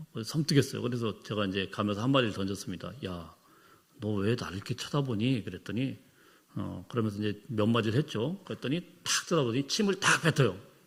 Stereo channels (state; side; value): identical; both; correlation 1.00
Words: 섬뜩했어요. 그래서 제가 이제 가면서 한마디를 던졌습니다. 야, 너 왜 나를 이렇게 쳐다보니? 그랬더니 그러면서 이제 몇 마디를 했죠. 그랬더니 탁 쳐다보더니 침을 딱 뱉어요.